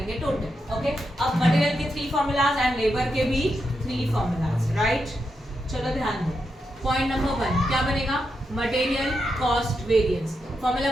टोटल. ओके, अब मटेरियल के 3 फॉर्मूलाज एंड लेबर के भी 3 फॉर्मूलाज. राइट, चलो ध्यान दो. पॉइंट नंबर 1 क्या बनेगा? Material cost variance. फॉर्मूला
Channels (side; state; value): both; normal; correlation 0.85